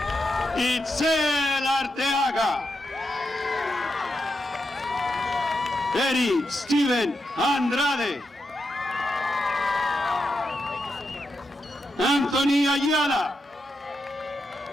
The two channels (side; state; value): both; normal; correlation 0.86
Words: Itzel Arteaga. Eric Steven Andrade. Anthony Ayala.